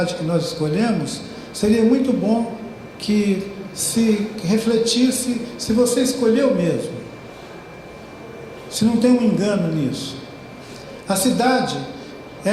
que nós escolhemos, seria muito bom que se refletisse se você escolheu mesmo, se não tem um engano nisso. A cidade,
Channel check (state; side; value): identical; both; correlation 1.00